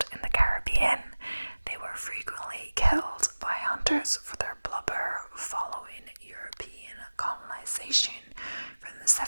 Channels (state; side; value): inverted; both; correlation -1.00